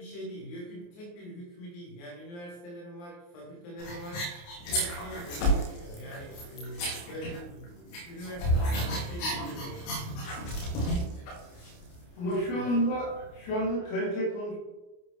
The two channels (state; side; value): late; right; 29 ms